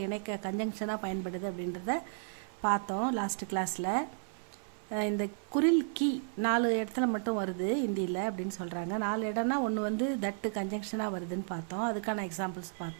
இணைக்க கன்ஜங்ஷனாக பயன்படுது அப்படின்றத பார்த்தோம் லாஸ்ட் கிளாஸில். இந்த குரில் கி 4 இடத்துல மட்டும் வருது ஹிந்தியில் அப்படின்னு சொல்கிறாங்க. 4 இடம்னா ஒன்று தட்டு கன்ஜங்ஷனாக வருதுன்னு பார்த்தோம், அதுக்கான எக்ஸாம்பிள்ஸ்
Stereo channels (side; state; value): left; silent; 56 dB below the other